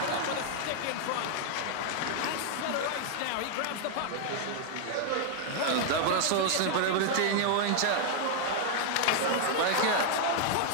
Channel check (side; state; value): both; different; correlation 0.00